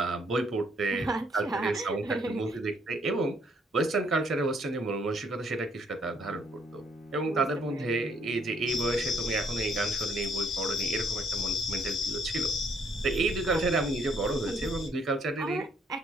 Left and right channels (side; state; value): both; normal; correlation 0.67